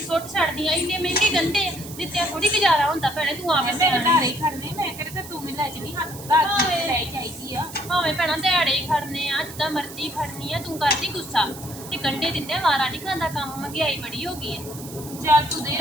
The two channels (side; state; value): right; noise; hiss, 14 dB below the sound